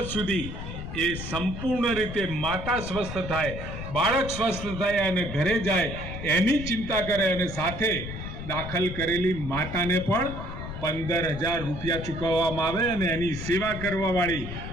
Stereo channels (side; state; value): left; noise; rumble, 8 dB below the sound